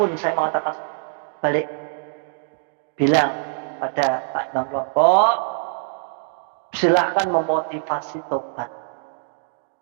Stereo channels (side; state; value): left; silent; digital silence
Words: saya mengatakan. Balik, bilang pada Pak Imam kelompok, silahkan memotivasi tobat,